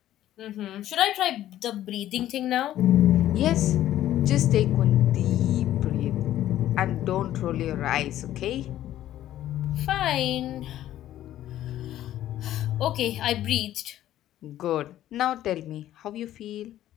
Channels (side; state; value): right; quieter; 12.9 dB